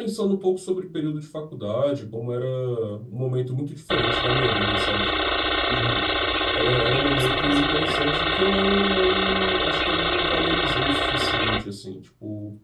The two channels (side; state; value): both; identical; correlation 1.00